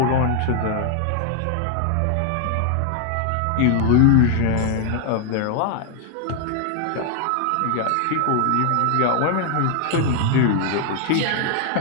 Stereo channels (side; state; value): both; different; correlation 0.00